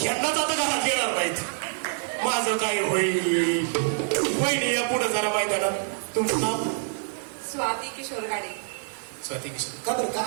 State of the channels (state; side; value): silent; left; digital silence